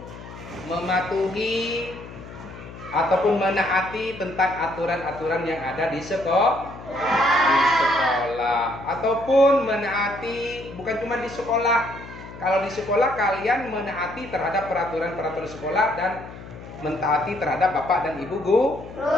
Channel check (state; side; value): noise; left; hum, 15 dB below the sound